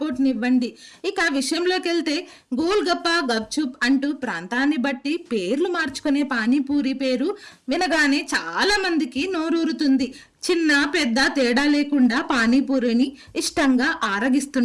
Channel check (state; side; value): identical; both; correlation 1.00